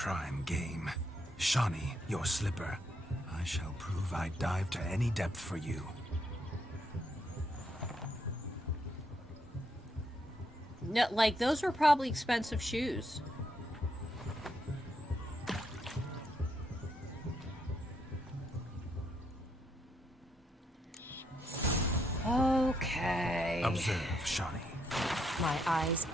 game. Shawnee, your slipper. I shall prove I dive to any depth for you. No, like, those were probably expensive shoes. Okay. Observe, Shawnee. My eyes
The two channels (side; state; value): both; normal; correlation 0.76